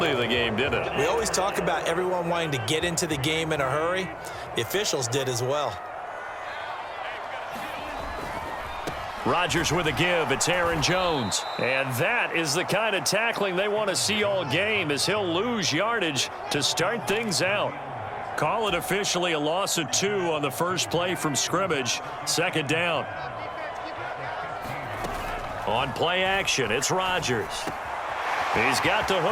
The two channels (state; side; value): identical; both; correlation 1.00